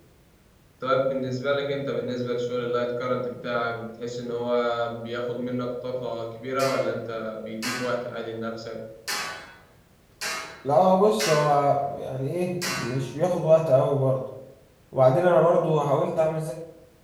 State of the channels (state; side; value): identical; both; correlation 1.00